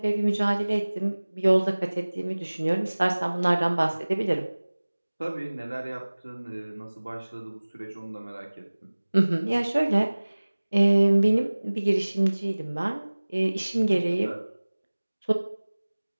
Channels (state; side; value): inverted; both; correlation -1.00